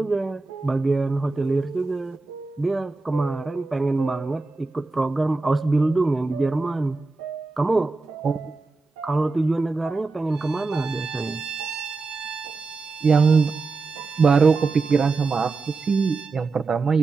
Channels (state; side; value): quieter; left; 3.8 dB